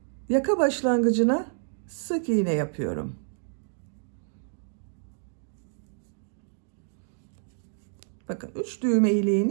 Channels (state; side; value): silent; left; digital silence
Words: Yaka başlangıcına sık iğne yapıyorum. Bakın 3 düğme